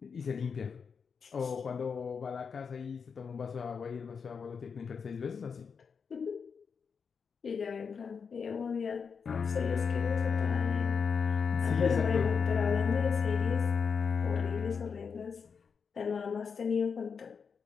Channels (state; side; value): quieter; right; 5.9 dB